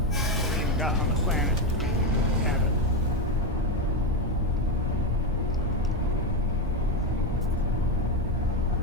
even got on the planet to have it.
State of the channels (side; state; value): both; normal; correlation 0.11